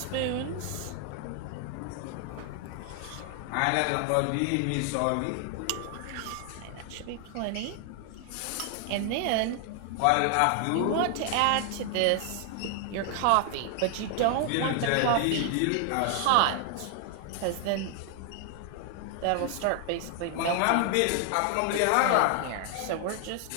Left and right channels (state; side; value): different; both; correlation 0.00